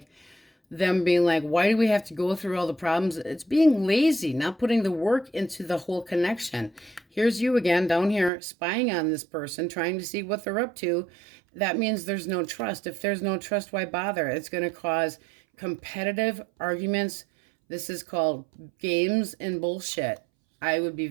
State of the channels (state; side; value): drops out; left; at 8.3 s